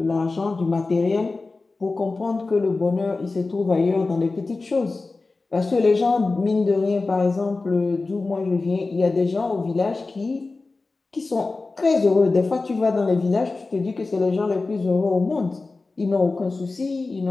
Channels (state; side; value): quieter; right; 3.6 dB